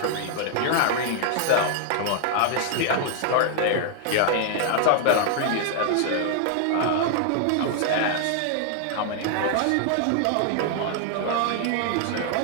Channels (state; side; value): different; both; correlation 0.00